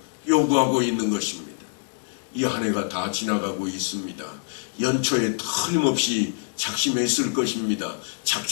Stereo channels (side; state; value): right; silent; digital silence